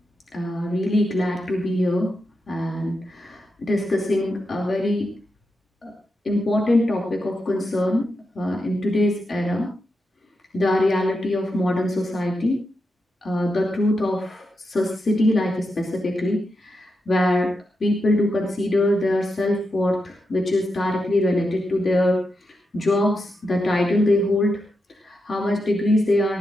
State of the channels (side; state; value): both; normal; correlation 0.86